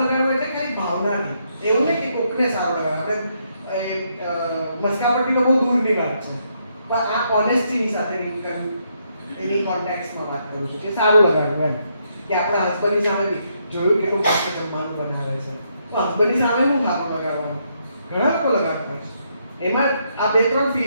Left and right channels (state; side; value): inverted; both; correlation -0.76